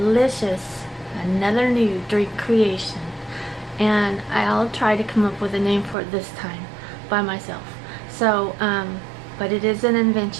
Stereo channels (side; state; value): left; drops out; at 6.0 s